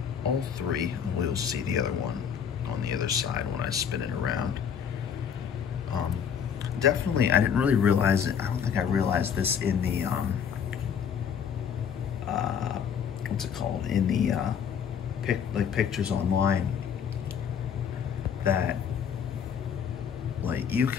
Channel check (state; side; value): quieter; right; 7.7 dB